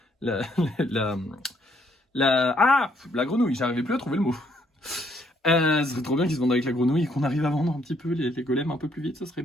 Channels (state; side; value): normal; both; correlation 0.69